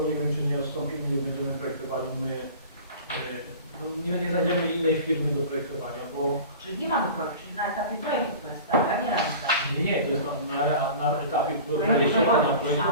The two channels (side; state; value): both; inverted; correlation -0.39